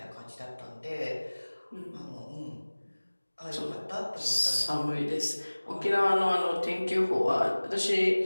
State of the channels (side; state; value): both; inverted; correlation -1.00